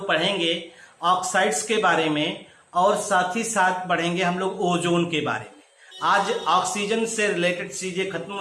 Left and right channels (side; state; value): both; identical; correlation 1.00